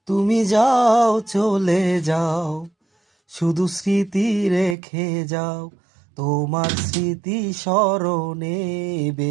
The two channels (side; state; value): left; drops out; at 4.8 s